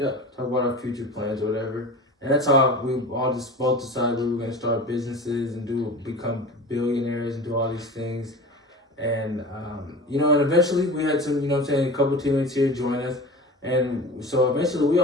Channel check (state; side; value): normal; both; correlation 0.34